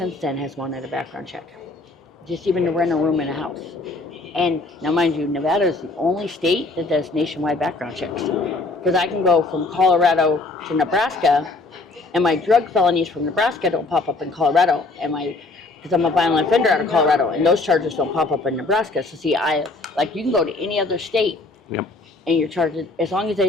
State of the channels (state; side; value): quieter; right; 3.3 dB